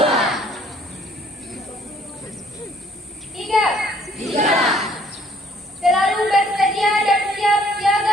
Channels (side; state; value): both; normal; correlation 0.60